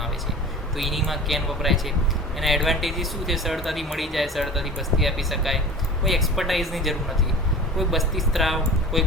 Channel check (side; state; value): both; normal; correlation 0.37